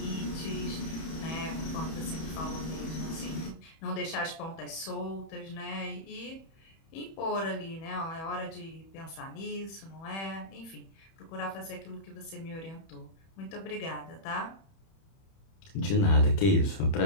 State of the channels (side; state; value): right; late; 31 ms